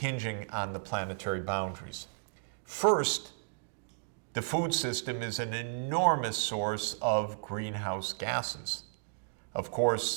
on the planetary boundaries. First, the food system is an enormous source of greenhouse gases. Of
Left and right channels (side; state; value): left; silent; digital silence